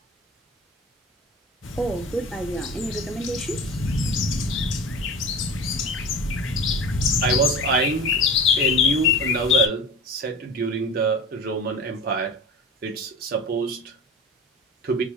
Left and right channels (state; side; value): normal; both; correlation 0.34